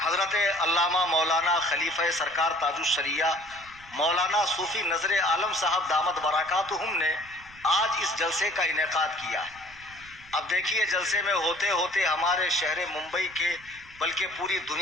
علامہ مولانا خلیفہ سرکار تاج الشریعہ مولانا صوفی نظر عالم صاحب دامت برکاتہم نے آج اس جلسے کا انعقاد کیا ہے۔ اب دیکھیے جلسے میں ہوتے ہوتے ہمارے شہر ممبئی کے بلکہ پوری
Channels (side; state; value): right; noise; rumble, 23 dB below the sound